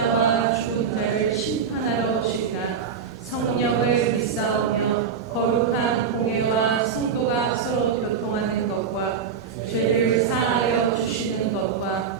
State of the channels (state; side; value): quieter; left; 6.5 dB